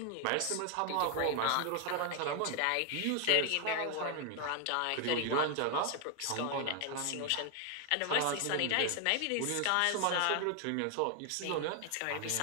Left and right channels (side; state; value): both; different; correlation 0.00